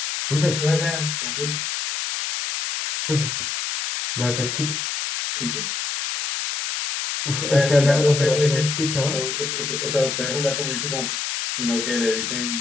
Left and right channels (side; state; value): left; noise; hiss, 2 dB below the sound